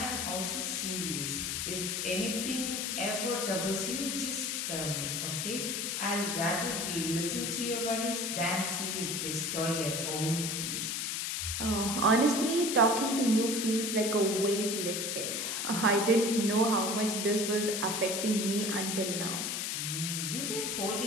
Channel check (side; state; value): left; noise; hiss, 1 dB below the sound